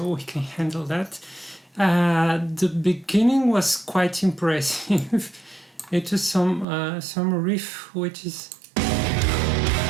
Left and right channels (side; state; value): left; drops out; at 6.7 s